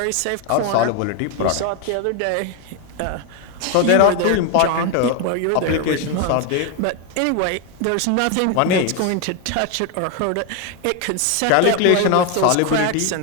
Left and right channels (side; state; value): both; different; correlation 0.01